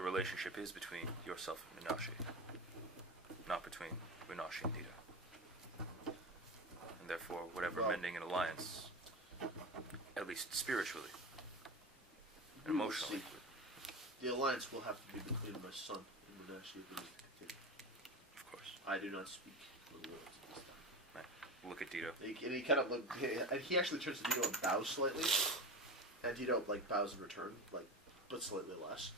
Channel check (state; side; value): normal; both; correlation 0.24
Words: is between yourself and Munashi, not between Munashi and Dito. And therefore, whatever mending an alliance, at least spiritually and We will emotionally, see. The alliance will have to be between my son and Munashi if it is to continue. of course. I do not speak for the words at this time. Look at Dito. And he kind of and he actually turns to Dito and bows slightly, and Dito like bows in return, like but slightly less.